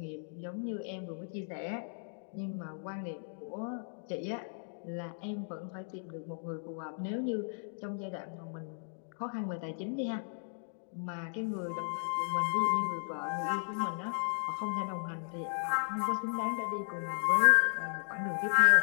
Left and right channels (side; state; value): right; silent; digital silence